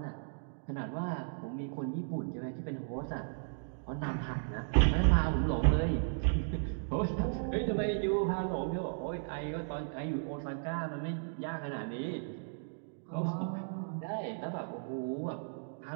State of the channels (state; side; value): silent; left; digital silence